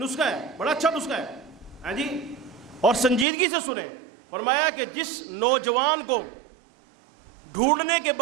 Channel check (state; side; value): drops out; left; at 3.2 s